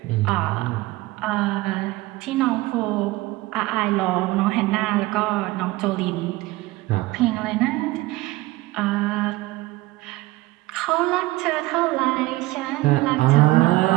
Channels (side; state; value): left; quieter; 19.3 dB